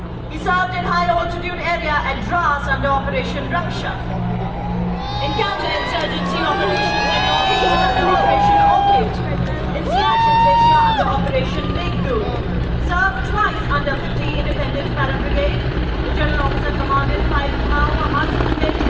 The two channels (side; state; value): both; identical; correlation 1.00